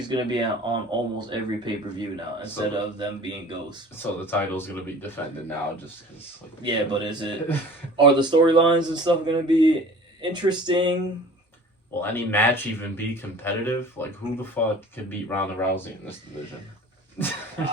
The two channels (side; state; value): both; normal; correlation 0.44